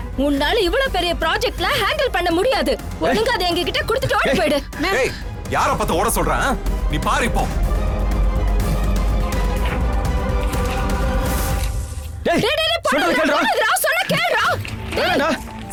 உன்னால இவ்வளவு பெரிய ப்ராஜெக்ட்ல ஹேண்டில் பண்ண முடியாது. ஒழுங்கா அதை எங்க கிட்ட கொடுத்துட்டு ஓடி போயிடு. ஏய், யார பார்த்து ஓட சொல்றேன்? நீ பாரு இப்போ. டேய் டேய் டேய் சொல்றத கேளுடா. சொன்னா கேளுடா. வேணாம்டா.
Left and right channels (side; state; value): both; identical; correlation 1.00